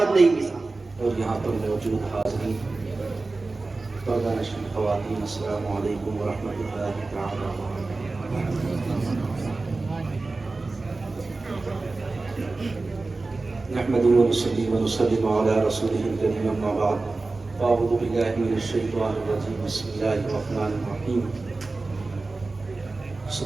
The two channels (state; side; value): quieter; left; 3.5 dB